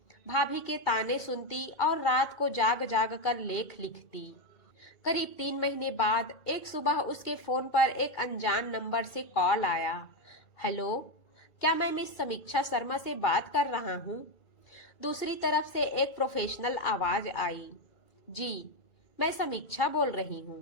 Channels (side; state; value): right; late; 2.3 ms